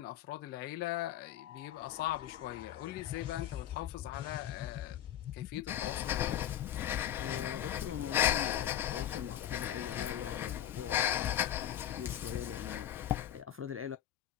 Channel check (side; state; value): right; quieter; 11.2 dB